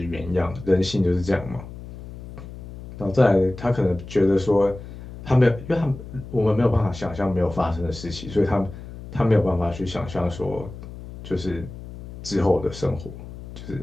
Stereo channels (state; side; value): noise; left; hum, 13 dB below the sound